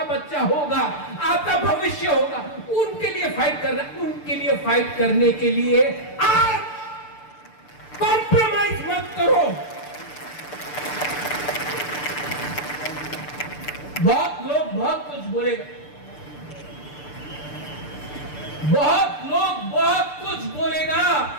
बच्चा होगा, आपका भविष्य होगा, उनके लिए फाइट कर रहा है। उनके लिए फाइट करने के लिए आज कॉम्प्रोमाइज मत करो। बहुत लोग बहुत कुछ बोलेगा, बहुत लोग बहुत कुछ बोलेगा,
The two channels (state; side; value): late; right; 6.8 ms